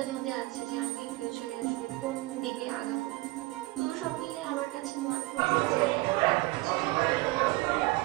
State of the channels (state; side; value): quieter; left; 21.5 dB